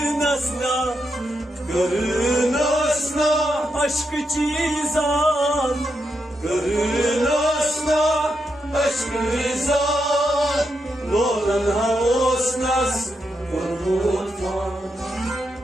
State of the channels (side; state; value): both; normal; correlation 0.84